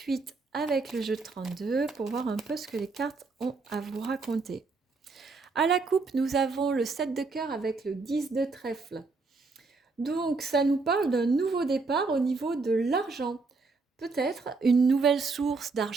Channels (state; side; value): quieter; left; 4.0 dB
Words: avec le jeu de 32 pour voir un peu ce que les cartes ont à vous raconter. À la coupe, nous avons le 7 de cœur avec le 10 de trèfle. Donc ça nous parle d'un nouveau départ au niveau de l'argent. Peut-être une nouvelle source